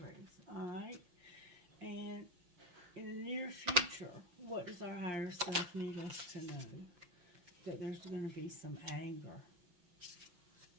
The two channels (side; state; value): left; late; 5.9 ms